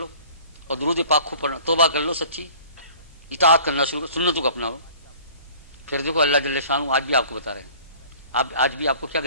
اور درود پاک خوب پڑھنا، توبہ کر لو، سچی اطاعت کرنا شروع کرو، سنتوں کو اپناؤ. پھر دیکھو اللہ جل شانہ آج بھی آپ کو بتا رہے ہیں. آج بھی آپ کو کیا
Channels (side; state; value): both; inverted; correlation -0.49